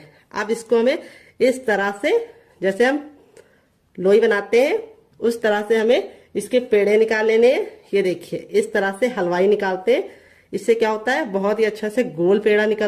अब इसको हमें इस तरह से, जैसे हम लोई बनाते हैं उस तरह से हमें इसके पेड़े निकाल लेने हैं। ये देखिए इस तरह से हलवाई निकालते हैं। इससे क्या होता है, बहुत ही अच्छा से गोल पेड़ा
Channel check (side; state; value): both; identical; correlation 1.00